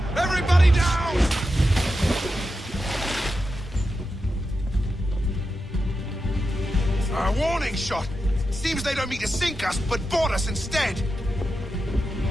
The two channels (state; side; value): normal; both; correlation 0.89